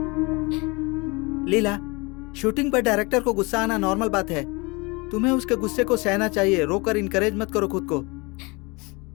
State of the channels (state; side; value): quieter; right; 27.2 dB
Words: लीला, शूटिंग पर डायरेक्टर को गुस्सा आना नॉर्मल बात है। तुम्हें उसके गुस्से को सहना चाहिए, रोकर इनकरेज मत करो खुद को।